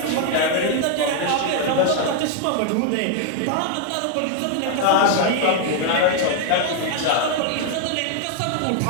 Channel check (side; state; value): both; different; correlation 0.00